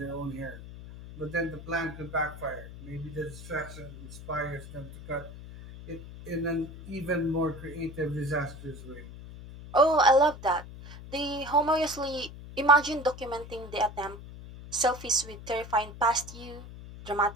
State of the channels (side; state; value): left; noise; hum, 14 dB below the sound